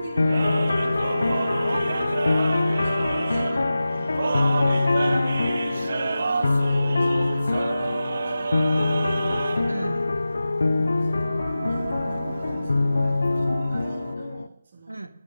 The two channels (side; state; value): both; inverted; correlation -0.94